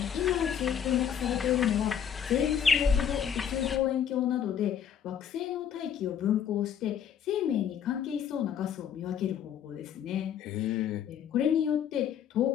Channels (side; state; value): right; quieter; 8.6 dB